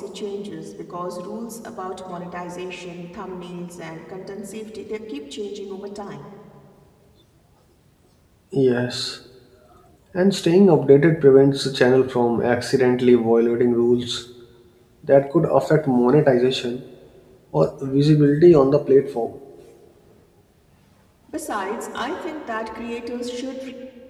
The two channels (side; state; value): both; identical; correlation 1.00